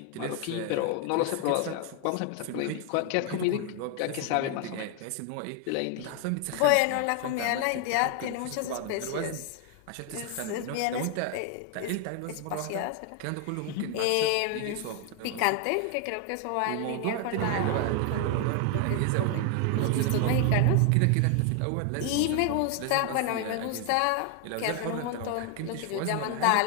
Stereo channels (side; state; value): both; different; correlation 0.01